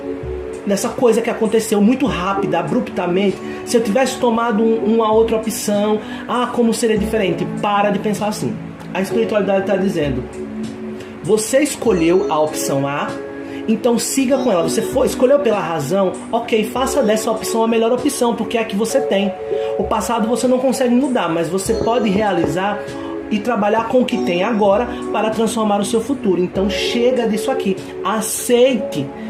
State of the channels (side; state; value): both; identical; correlation 1.00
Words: dessa coisa que aconteceu muito rápida, abruptamente, se eu tivesse tomado uma outra opção, como seria diferente? Para de pensar assim. A espiritualidade está dizendo, você escolheu a opção A, então siga com ela. Você escolheu pela razão, ok, faça dessa opção a melhor opção, porque é a que você tem. O passado você não consegue mudar, mas você pode realizar e trabalhar com o que tem agora para transformar o seu futuro. Então chega disso aqui, aceite